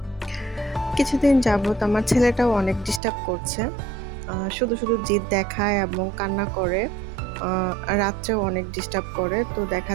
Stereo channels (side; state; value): left; drops out; at 3.0 s